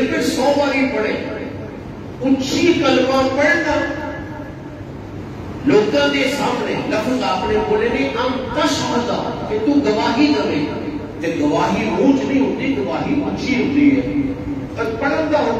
میں 100 باری پڑھے. اونچی کلمہ پڑھنا لوگوں کے سامنے لفظ آپ نے بولے نہیں ہم تشہد کہ تو گواہی دے, تے گواہی اونچ نہیں ہوتی, گواہی اونچی ہوتی ہے. اور پڑھن کا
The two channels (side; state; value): both; identical; correlation 1.00